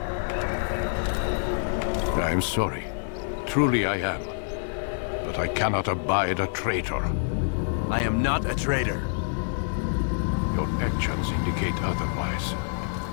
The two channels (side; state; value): right; silent; digital silence